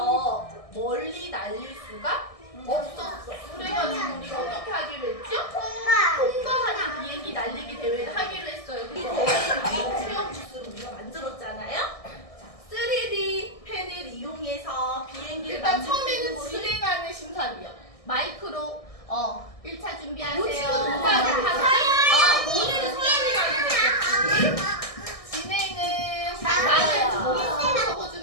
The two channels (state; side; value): late; right; 1.6 ms